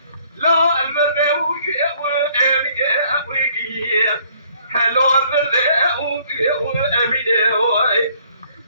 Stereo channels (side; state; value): both; inverted; correlation -0.62